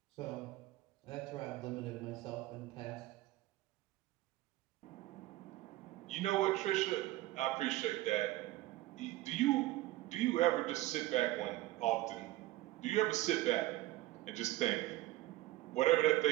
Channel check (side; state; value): left; quieter; 17.0 dB